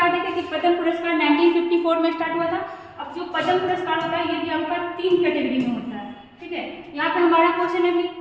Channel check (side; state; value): both; identical; correlation 1.00